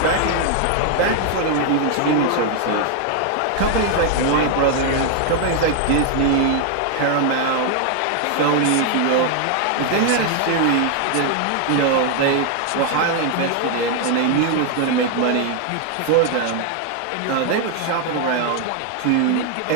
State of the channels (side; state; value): both; different; correlation 0.00